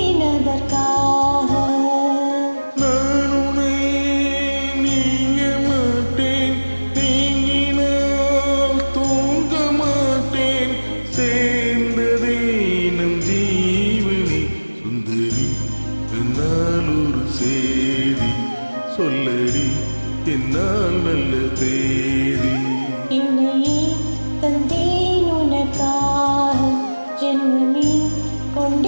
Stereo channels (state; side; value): inverted; both; correlation -1.00